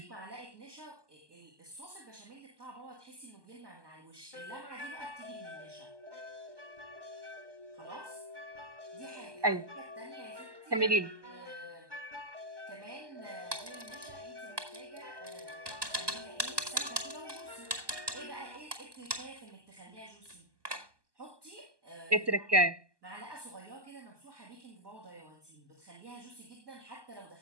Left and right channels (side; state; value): left; late; 1.2 ms